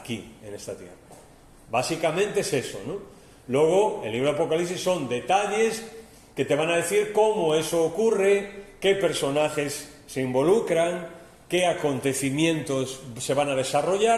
en esta tierra. Básicamente es eso, ¿no? Luego, el libro de Apocalipsis son detalles que te van a decir cómo eso ocurre, qué personajes se involucran, qué acontecimientos se van a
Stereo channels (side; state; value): both; identical; correlation 1.00